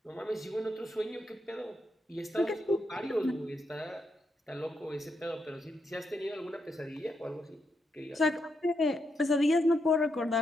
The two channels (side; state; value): both; normal; correlation 0.82